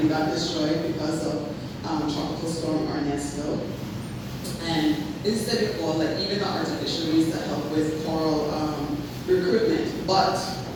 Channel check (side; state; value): both; identical; correlation 1.00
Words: got destroyed because of Tropical Storm Ernesto. And instead before, like even the artificial reefs that help with coral recruitment. But